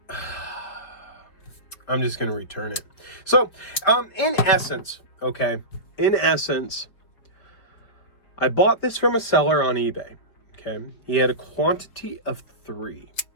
just going to return it. So, in essence, I bought this from a seller on eBay. Okay, he had a quantity of 3.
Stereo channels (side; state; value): right; late; 4.6 ms